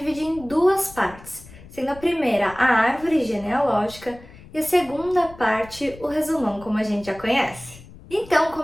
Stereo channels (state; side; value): noise; left; rumble, 20 dB below the sound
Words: em duas partes, sendo a primeira a árvore genealógica e a segunda parte o resumão como a gente já conhece. Então,